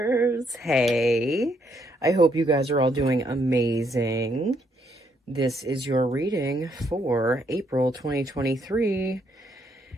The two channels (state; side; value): normal; both; correlation 0.73